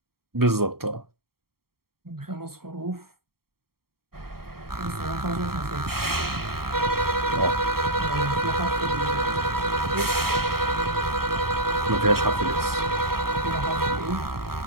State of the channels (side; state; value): left; late; 0.94 ms